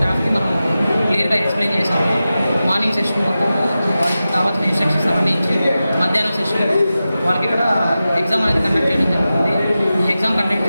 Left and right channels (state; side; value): inverted; both; correlation -0.93